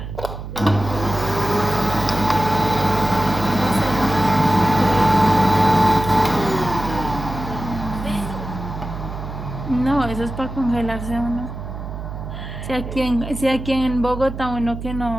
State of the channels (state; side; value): noise; right; hum, 8 dB below the sound